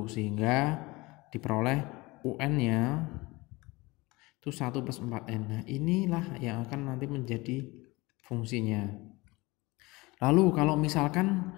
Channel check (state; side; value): quieter; right; 22.8 dB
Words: sehingga diperoleh UN-nya itu 1 plus 4n. Nah, inilah yang akan nanti menjadi fungsinya. Lalu kalau misalkan